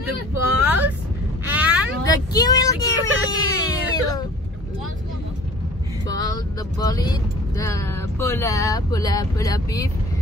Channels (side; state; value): both; normal; correlation 0.46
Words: the balls and the kiwil. The bola beef,